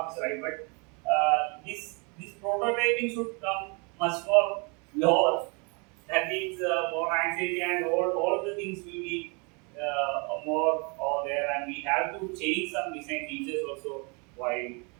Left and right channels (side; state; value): left; quieter; 32.7 dB